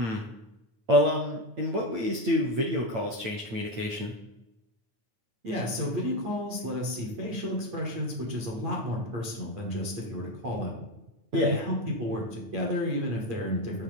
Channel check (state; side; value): late; left; 9.0 ms